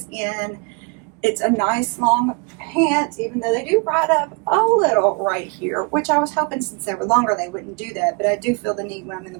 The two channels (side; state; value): left; quieter; 31.8 dB